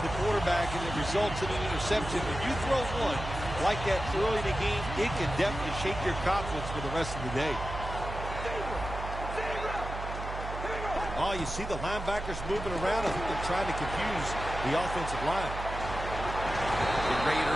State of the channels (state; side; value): noise; right; hum, 7 dB below the sound